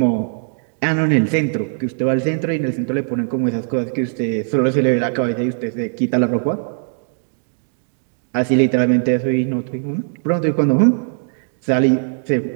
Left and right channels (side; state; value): left; silent; digital silence